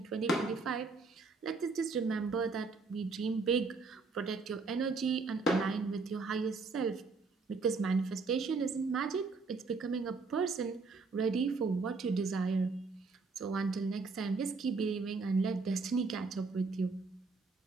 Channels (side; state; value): left; quieter; 4.2 dB